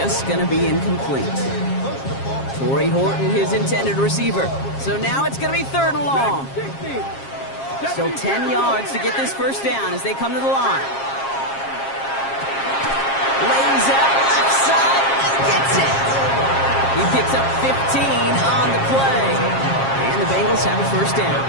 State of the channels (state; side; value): late; right; 7.4 ms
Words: going to be incomplete. Torrey Horton, his intended receiver. So now it's going to be third and long. 60. Still 10 yards to get this first down as they come to the line. Lays out left side and gets it. He picks up 15 on the play. And the Bengals have a first down.